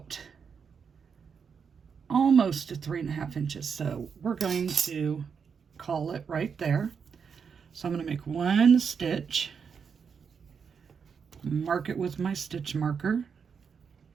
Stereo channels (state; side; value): quieter; left; 6.3 dB